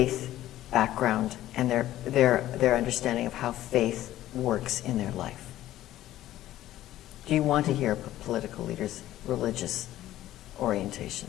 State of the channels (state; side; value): quieter; right; 14.0 dB